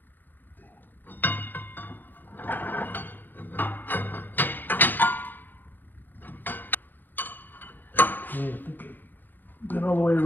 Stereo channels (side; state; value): right; late; 0.089 ms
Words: Okay, I think I've been all the way